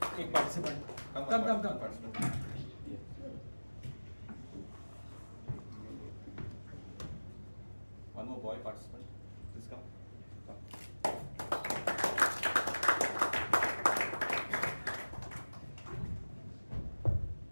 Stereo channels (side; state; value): both; inverted; correlation -1.00